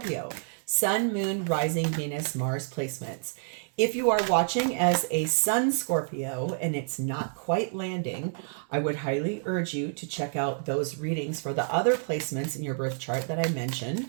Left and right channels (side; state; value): left; silent; digital silence